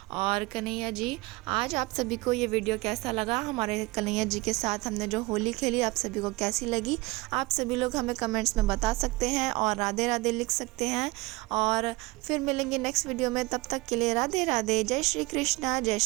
और कन्हैया जी, आज आप सभी को ये वीडियो कैसा लगा, हमारे कन्हैया जी के साथ हमने जो होली खेली आप सभी को कैसी लगी, आप सभी लोग हमें कमेंट्स में बता सकते हैं और राधे राधे लिख सकते हैं। और फिर मिलेंगे नेक्स्ट वीडियो में, तब तक के लिए राधे राधे, जय श्री कृष्णा, जय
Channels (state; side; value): quieter; left; 22.7 dB